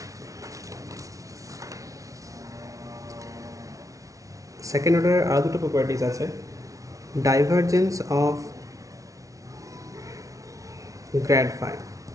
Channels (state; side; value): late; left; 0.17 ms